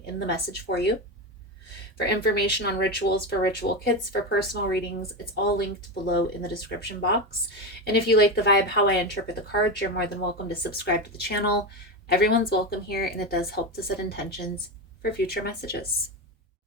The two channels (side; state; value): both; normal; correlation 0.17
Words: in the message for you. For information on rituals, for ritual kits, for personal readings, it's all linked below in the description box. And if you like the vibe, how I interpret the cards, you're more than welcome to subscribe to the channel. Everyone's welcome here, and it does help to set intentions for future messages.